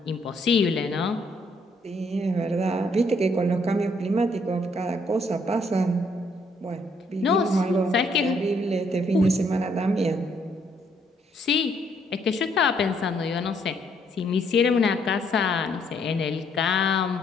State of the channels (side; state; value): both; normal; correlation 0.69